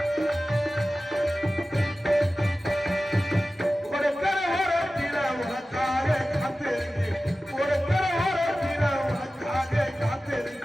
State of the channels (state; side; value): normal; both; correlation 0.95